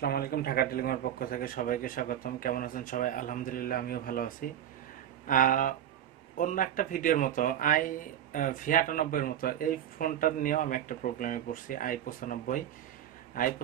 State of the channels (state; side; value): quieter; left; 10.6 dB